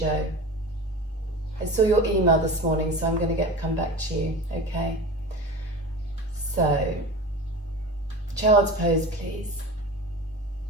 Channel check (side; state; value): both; normal; correlation 0.33